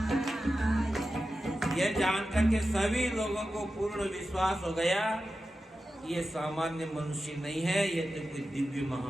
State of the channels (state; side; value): normal; both; correlation 0.92